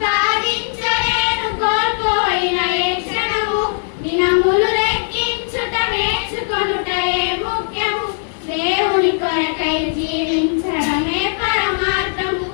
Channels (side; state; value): right; silent; digital silence